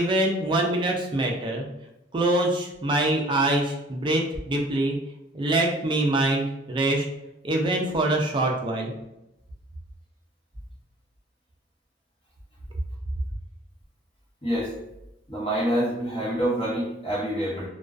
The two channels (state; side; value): normal; both; correlation 0.52